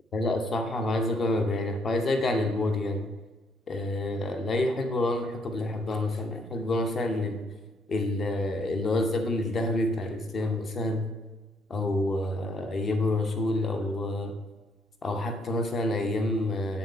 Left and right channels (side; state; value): both; normal; correlation 0.70